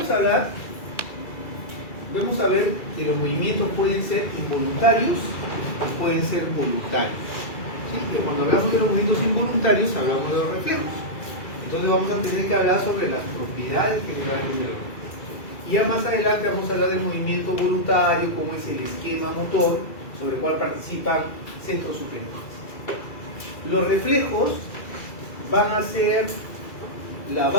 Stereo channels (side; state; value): right; late; 2.3 ms